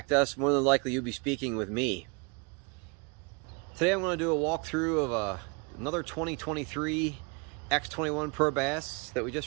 us, more than likely you'll be speaking with me. Today I'm going to do a walkthrough of another 2023 X21 Pro Bass that we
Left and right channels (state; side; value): quieter; left; 31.9 dB